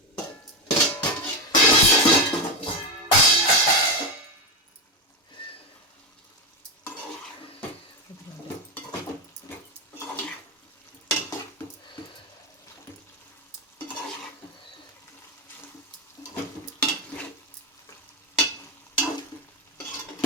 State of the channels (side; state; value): both; normal; correlation 0.11